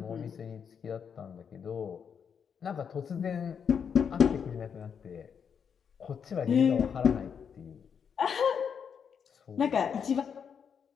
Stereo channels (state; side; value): quieter; right; 7.1 dB